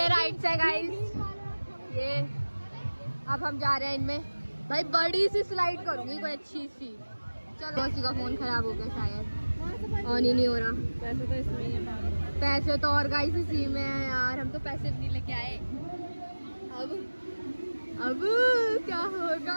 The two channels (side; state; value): both; inverted; correlation -1.00